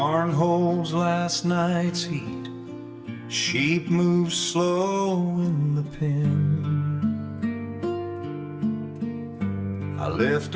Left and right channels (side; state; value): both; identical; correlation 1.00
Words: holds last night's heat, sheep move slow in the pen. I lift